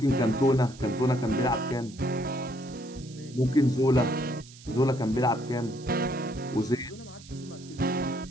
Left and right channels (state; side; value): noise; right; hiss, 20 dB below the sound